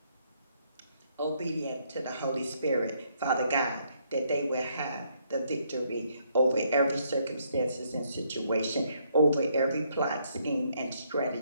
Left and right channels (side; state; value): both; inverted; correlation -0.71